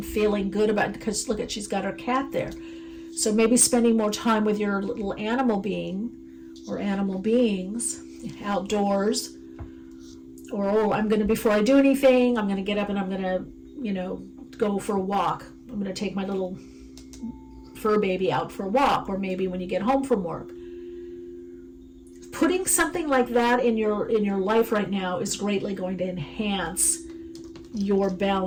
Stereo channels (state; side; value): identical; both; correlation 1.00